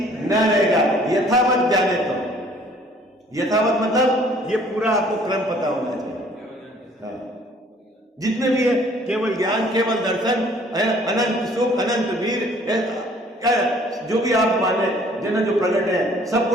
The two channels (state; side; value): normal; both; correlation 0.57